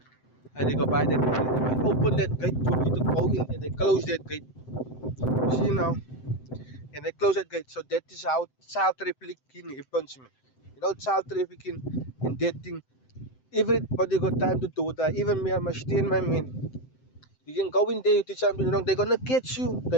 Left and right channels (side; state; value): right; late; 7.8 ms